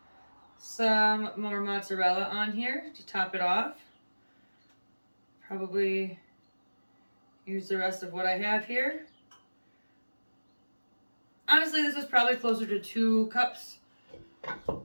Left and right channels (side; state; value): both; inverted; correlation -1.00